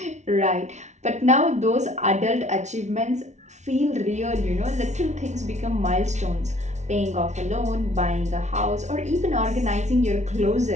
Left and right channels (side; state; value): left; late; 0.33 ms